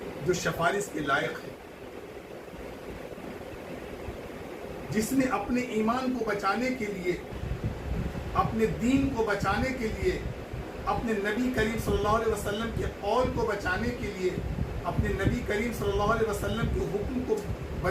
جو سفارش کے لائق ہے، جس نے اپنے ایمان کو بچانے کے لیے، اپنے دین کو بچانے کے لیے، اپنے نبی کریم صلی اللہ علیہ وسلم کے قول کو بچانے کے لیے، اپنے نبی کریم صلی اللہ علیہ وسلم کے حکم کو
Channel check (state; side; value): identical; both; correlation 1.00